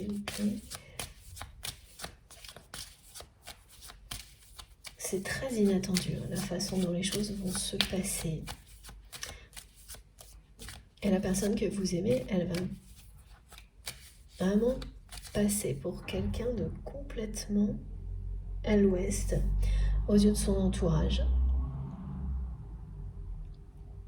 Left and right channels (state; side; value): identical; both; correlation 1.00